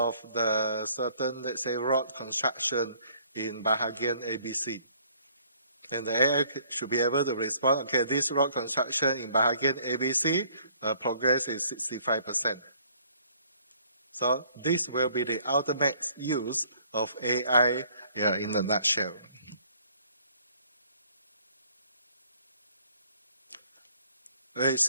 the certain, let's say, road construction in Bahagian ABC? And the AI should be able to respond, okay, this road construction in Bahagian ABC, progress is 65%. So this will be the ultimate use of AI in a nutshell.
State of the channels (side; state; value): both; inverted; correlation -0.61